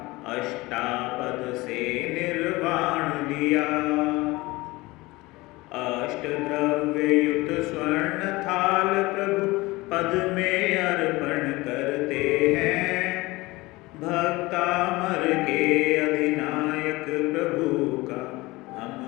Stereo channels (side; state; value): right; quieter; 21.4 dB